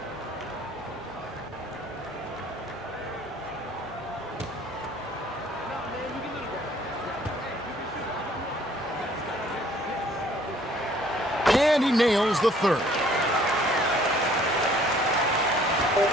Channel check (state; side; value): normal; both; correlation 0.58